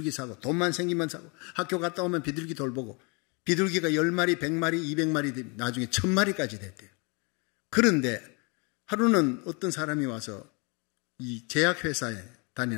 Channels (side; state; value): right; quieter; 31.9 dB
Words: 사고 돈만 생기면 사고 학교 갔다 오면 비둘기 돌보고 비둘기가 10마리, 100마리, 200마리 나중에 1000마리까지 됐대요. 그런데 하루는 어떤 사람이 와서 이 제약회사에